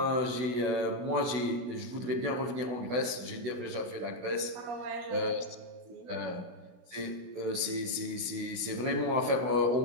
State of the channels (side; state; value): left; late; 16 ms